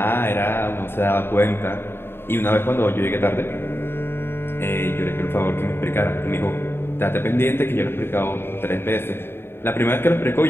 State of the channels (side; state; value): right; late; 0.11 ms